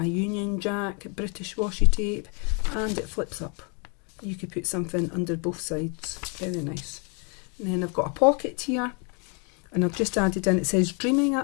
Union Jack British washi tape, and it flips up. You could put something under both sides, very nice. And then I've got a pocket here, and I've just added in, it says dreaming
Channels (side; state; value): right; quieter; 35.7 dB